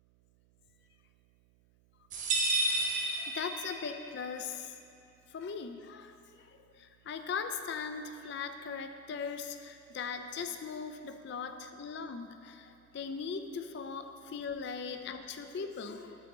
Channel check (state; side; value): noise; right; hum, 28 dB below the sound